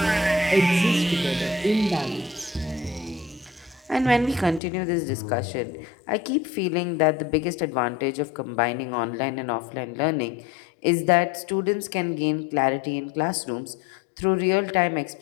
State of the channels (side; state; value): right; drops out; at 4.6 s